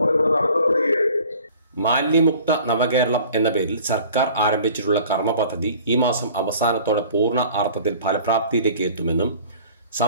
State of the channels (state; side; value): inverted; both; correlation -0.48